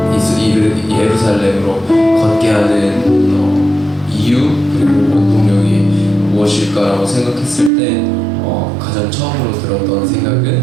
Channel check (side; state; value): left; drops out; at 7.7 s